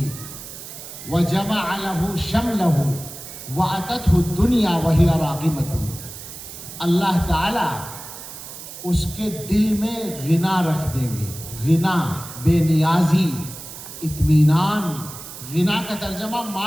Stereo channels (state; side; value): noise; right; hiss, 12 dB below the sound